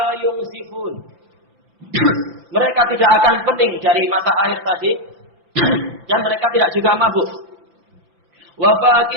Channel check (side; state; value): left; late; 5.9 ms